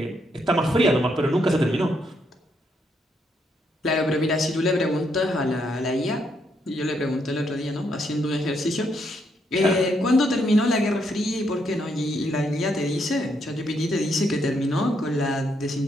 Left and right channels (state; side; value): normal; both; correlation 0.76